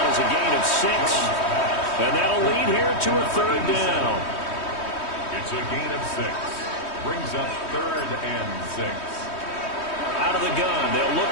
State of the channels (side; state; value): right; late; 3.2 ms